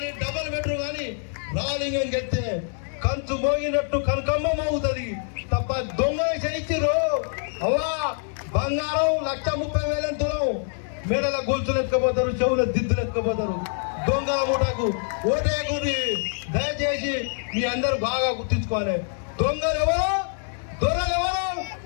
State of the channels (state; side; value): silent; right; 59 dB below the other